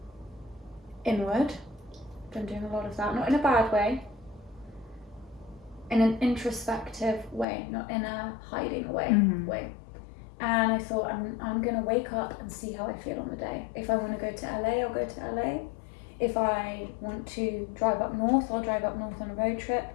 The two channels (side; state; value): right; drops out; at 7.5 s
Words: inward. Been doing a lot of that. Not in a bad way. In an introspective way, not in a hiding way. And I thought, I'm going to wake up and see how I feel on the day. If I want to go to LA, I'll go to LA. If I want to drive up north, I'll drive up north on a road trip.